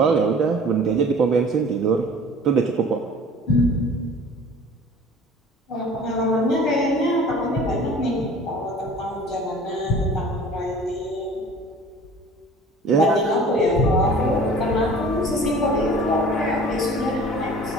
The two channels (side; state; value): both; normal; correlation 0.45